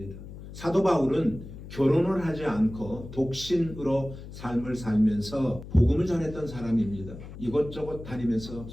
사도 바울은 결혼을 하지 않고 독신으로 삶을 살면서 복음을 전했던 사람입니다. 이곳저곳 다니면서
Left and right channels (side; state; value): left; noise; hum, 13 dB below the sound